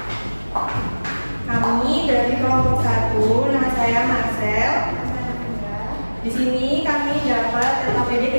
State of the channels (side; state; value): both; inverted; correlation -1.00